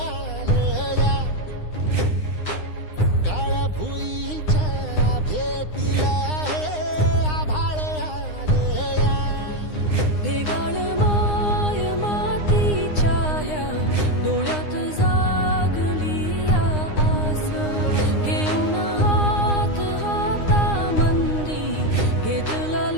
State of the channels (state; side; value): late; right; 9.8 ms